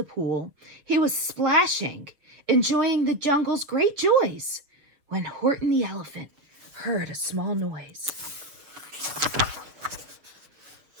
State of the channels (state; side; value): late; left; 6.7 ms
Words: pool, he was splashing, enjoying the jungle's great joys, when Horton the elephant heard a small noise.